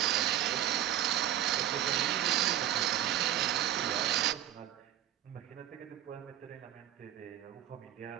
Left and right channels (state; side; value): quieter; left; 11.7 dB